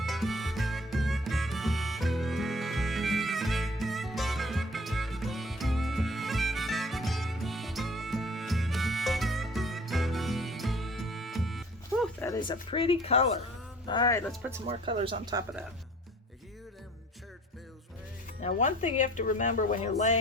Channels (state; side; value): normal; both; correlation 0.50